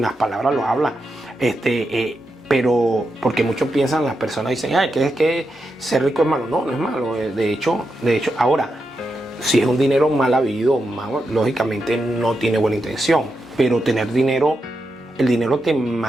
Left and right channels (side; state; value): both; normal; correlation 0.86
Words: las palabras lo habla. Pero porque muchos piensan, las personas dicen, ay, que es que ser rico es malo. No, no es malo. De hecho, ahora, si es un dinero mal habido, lógicamente no tiene buena intención. Pero tener dinero, el dinero te